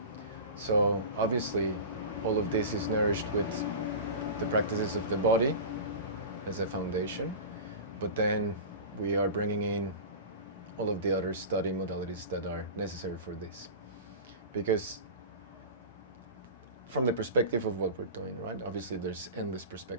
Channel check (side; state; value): both; inverted; correlation -0.30